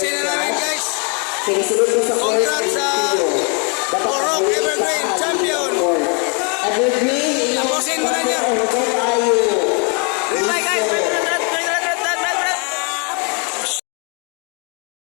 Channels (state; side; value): quieter; right; 35.8 dB